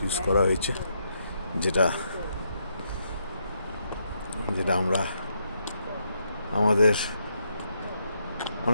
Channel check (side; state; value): both; inverted; correlation -0.78